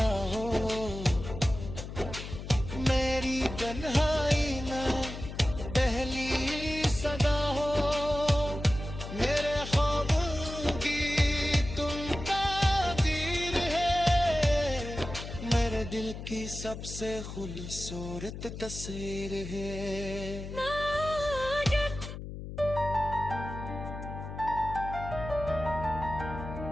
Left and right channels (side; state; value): left; noise; hum, 9 dB below the sound